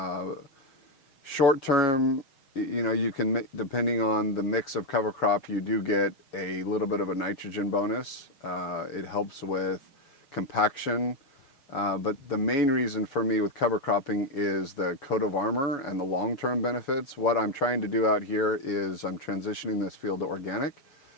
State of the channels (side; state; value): right; late; 6.4 ms